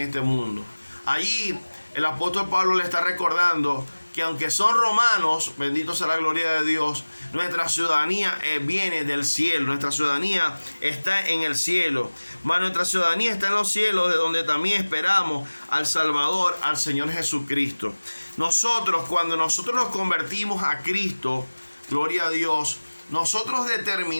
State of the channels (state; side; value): inverted; both; correlation -1.00